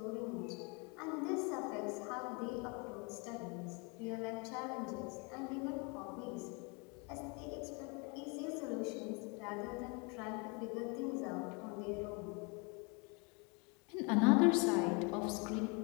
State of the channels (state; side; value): quieter; right; 31.9 dB